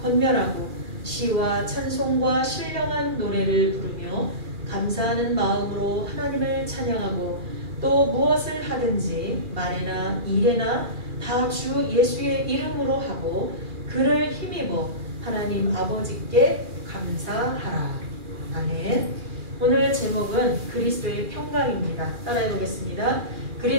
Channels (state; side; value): late; left; 2.4 ms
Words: 권면하고 시와 찬송과 신령한 노래를 부르며 감사하는 마음으로 하나님을 찬양하고 또 무엇을 하든지 말에나 일에나 다 주 예수의 이름으로 하고 그를 힘입어 하나님 아버지께 감사하라. 아멘. 오늘 제목은 그리스도의 평강입니다. 따라해 보겠습니다.